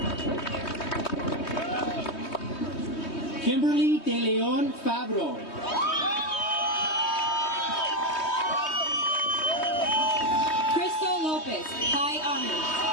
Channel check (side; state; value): right; late; 3.2 ms